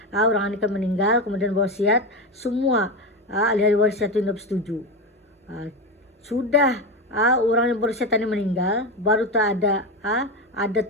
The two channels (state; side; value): normal; both; correlation 0.17